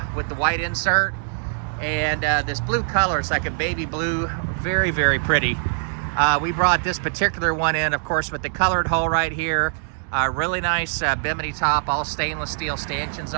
with the white insert. And this blue color, it's like a baby blue, very, very pretty. We brought this particular one in, of course, with the colored hull right here. Really nice bimini top, all stainless steel stanchions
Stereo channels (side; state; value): left; silent; digital silence